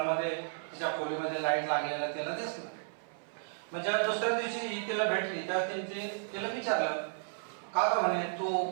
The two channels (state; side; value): silent; left; 55 dB below the other